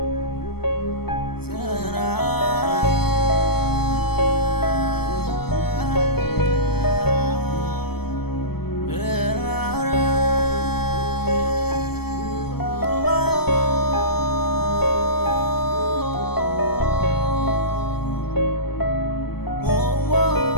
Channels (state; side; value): late; right; 0.96 ms